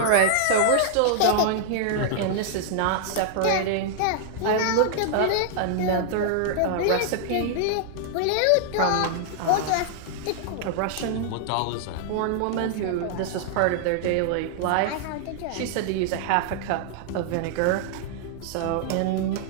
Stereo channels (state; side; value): different; both; correlation -0.01